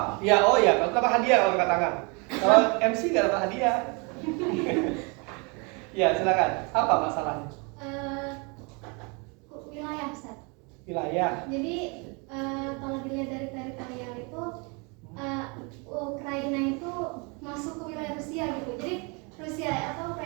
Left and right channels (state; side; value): quieter; left; 31.5 dB